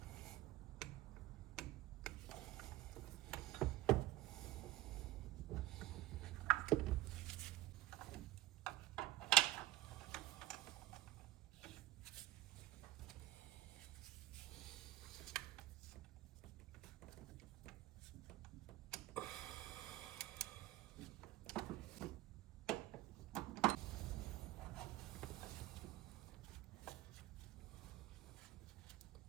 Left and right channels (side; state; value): left; quieter; 15.7 dB